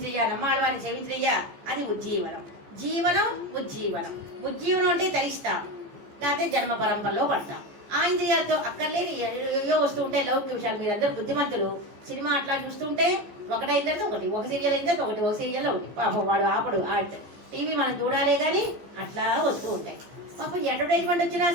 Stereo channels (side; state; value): left; late; 15 ms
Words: నమ్మాళ్వారిని సేవించయ్యా, అది ఉజ్జీవనం. జీవనం ఉజ్జీవనం. ఉజ్జీవనం అంటే తరిస్తాం, లేకపోతే జన్మ పరంపరలో పడతాం. ఆ ఆ ఇంద్రియాలతో అక్కర్లేని ఏయో వస్తూ ఉంటాయి లౌకిక విషయాలు. మీరందరూ బుద్ధిమంతులు, సినిమా అట్లా చూస్తుంటే ఒకటైన తర్వాత ఒకటి, ఒక సీరియల్ అయిన తర్వాత ఒకటి, ఒక సీరియల్లో ఒకటి. పాపం వాడు ఆపడు. టీవీ మనం చూడాలే కానీ అట్లా వస్తూ ఉంటాయి. పాపం అడ్వర్టైజ్మెంట్ వచ్చినా